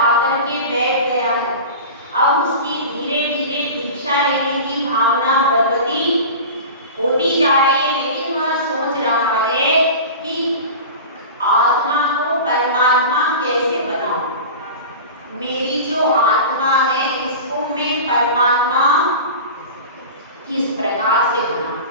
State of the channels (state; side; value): inverted; both; correlation -0.32